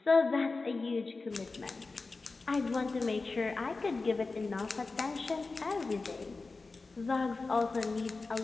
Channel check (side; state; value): right; quieter; 3.8 dB